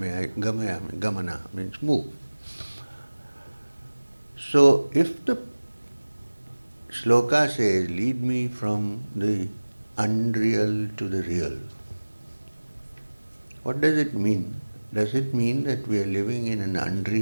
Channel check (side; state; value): both; inverted; correlation -1.00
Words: I, gamana means move. So if the shloka says, lead me from the unreal to the real, what does it mean? Does it mean that we are living in an